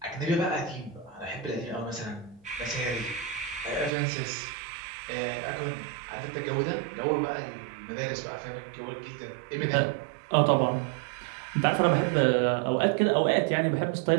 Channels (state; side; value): drops out; left; at 3.9 s